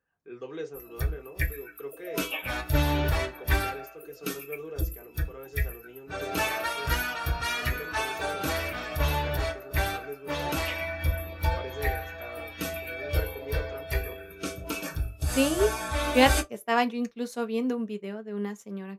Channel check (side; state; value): both; identical; correlation 1.00